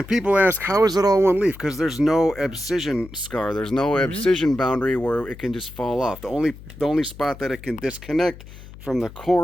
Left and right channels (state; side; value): noise; left; hum, 17 dB below the sound